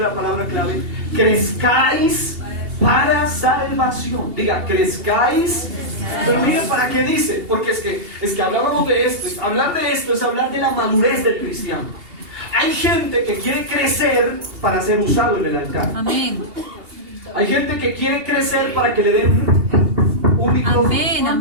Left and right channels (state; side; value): late; left; 2.8 ms